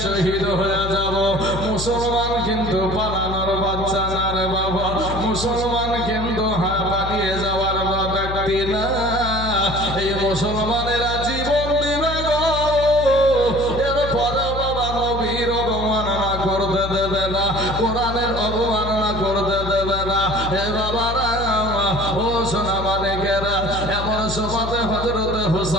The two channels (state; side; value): noise; left; hum, 7 dB below the sound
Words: শহীদ হয়ে যাব। মুসলমান কিন্তু পালানোর বাচ্চা না রে বাবা, মুসলমান কিন্তু পালিয়ে যাওয়ার ব্যক্তি না। এই মুসলমানেরা জীবন দিবে গো, এরপরে বাবা নবীর অবমাননা করতে দেবে না, কোরআনের অবমাননা করতে দেবে না। হে বাবারা, ও সোনা মানিকেরা, এমন সময় হযরত